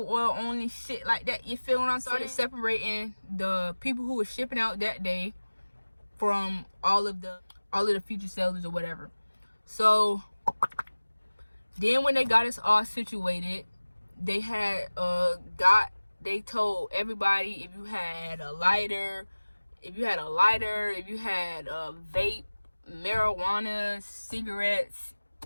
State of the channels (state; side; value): inverted; both; correlation -1.00